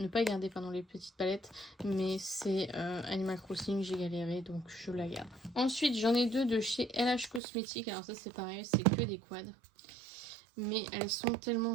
pas garder pardon les petites palettes. Mais c'est Animal Crossing, j'ai galéré, donc je la garde. Ensuite j'en ai deux de chez LH Cosmetics. Alors ça c'est pareil, c'est que des quads, mais elles sont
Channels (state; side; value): drops out; left; at 7.4 s